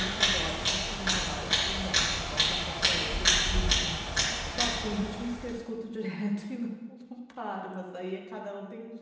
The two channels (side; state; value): both; identical; correlation 1.00